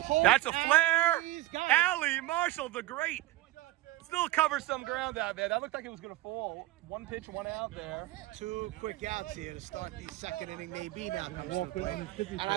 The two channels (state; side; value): quieter; left; 17.3 dB